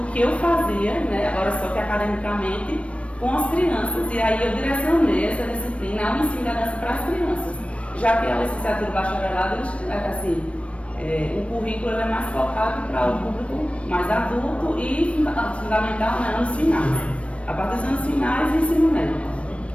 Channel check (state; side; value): late; right; 0.062 ms